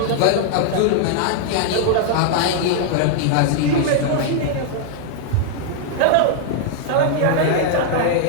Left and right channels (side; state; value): both; different; correlation -0.01